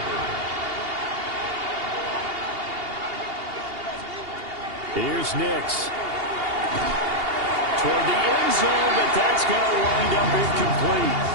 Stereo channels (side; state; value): left; late; 2.8 ms